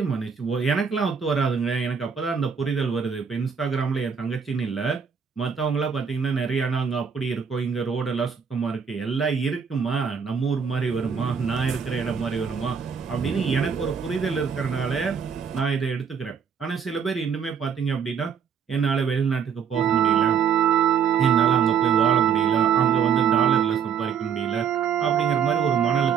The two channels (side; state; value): left; quieter; 7.0 dB